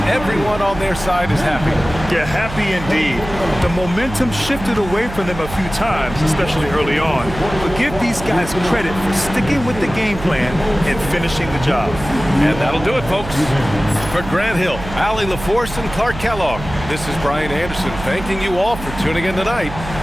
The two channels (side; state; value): right; noise; hum, 11 dB below the sound